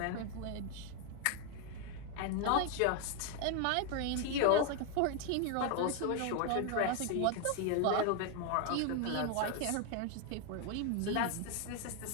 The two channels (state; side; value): different; both; correlation 0.01